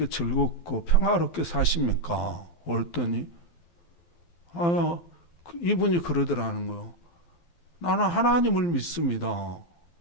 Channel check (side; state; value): right; late; 12 ms